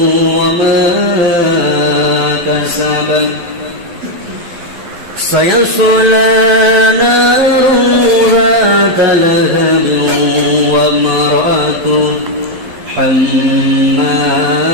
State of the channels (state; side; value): late; left; 12 ms